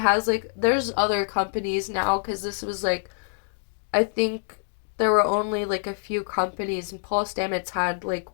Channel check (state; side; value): silent; right; digital silence